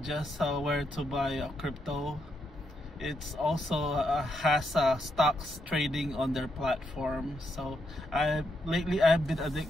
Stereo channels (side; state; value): both; normal; correlation 0.80